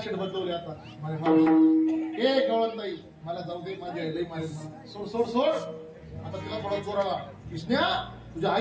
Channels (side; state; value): both; identical; correlation 1.00